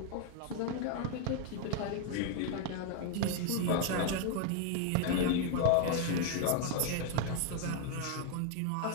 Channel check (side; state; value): both; different; correlation 0.00